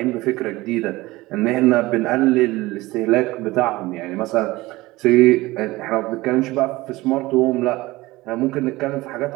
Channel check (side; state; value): left; quieter; 19.7 dB